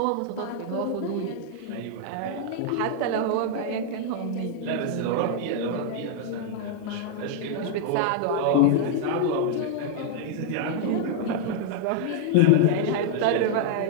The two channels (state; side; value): different; both; correlation -0.01